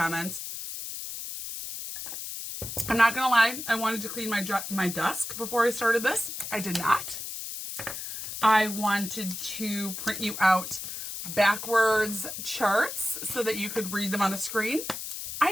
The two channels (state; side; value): noise; left; hiss, 7 dB below the sound